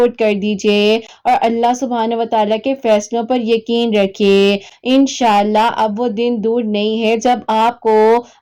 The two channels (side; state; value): both; identical; correlation 1.00